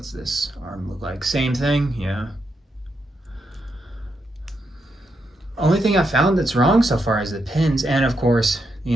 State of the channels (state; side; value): normal; both; correlation 0.82